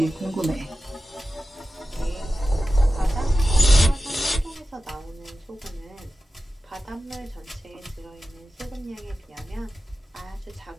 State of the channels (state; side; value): normal; both; correlation 0.94